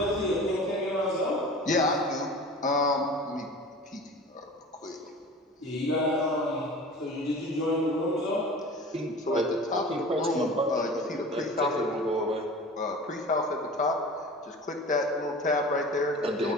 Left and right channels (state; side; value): normal; both; correlation 0.38